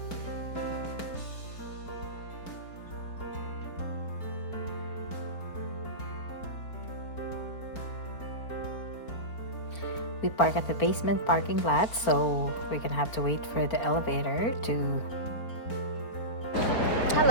We park at the basement parking lot, so we're gonna have to wait for the elevator to...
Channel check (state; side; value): late; right; 4.4 ms